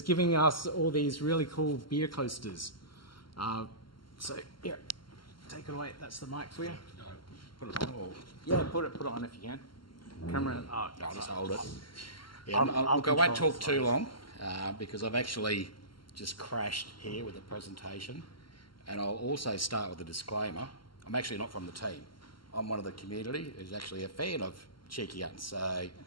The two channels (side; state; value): right; late; 0.72 ms